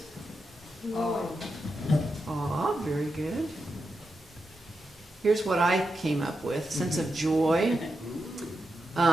Aw, very good. Here's what I came up with. Sense of joy.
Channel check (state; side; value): normal; both; correlation 0.87